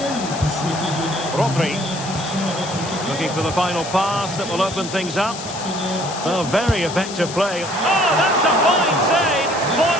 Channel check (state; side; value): noise; left; hiss, 10 dB below the sound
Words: Rodri. Looking for the final pass that will open things up. Oh, very effective play. Oh, that's a fine save.